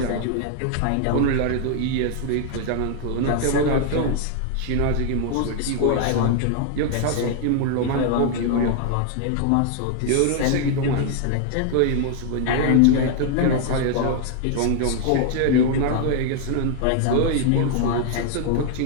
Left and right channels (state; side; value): different; both; correlation 0.00